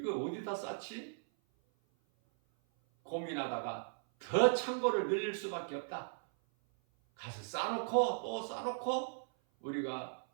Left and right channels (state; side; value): silent; left; 53 dB below the other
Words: 쌓지? 고민하다가 더 창고를 늘릴 수밖에 없다. 가서 쌓아놓고 또 쌓아놓고 우리가